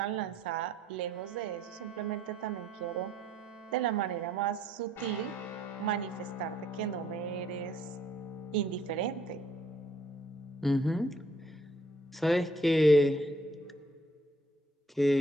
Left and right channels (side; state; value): both; normal; correlation 0.64